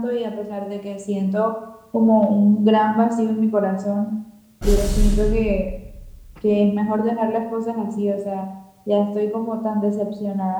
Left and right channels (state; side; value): identical; both; correlation 1.00